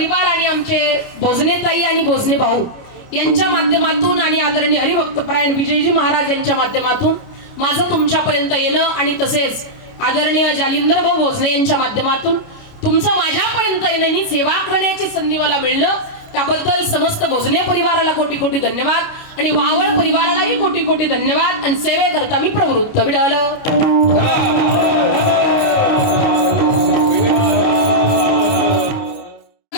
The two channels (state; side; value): late; right; 29 ms